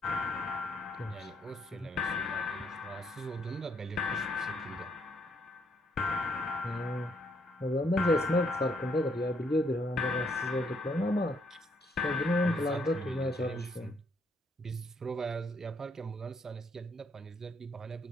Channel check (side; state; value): both; normal; correlation 0.71